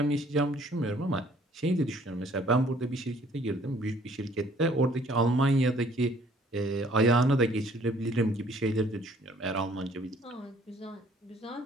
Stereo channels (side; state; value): both; normal; correlation 0.59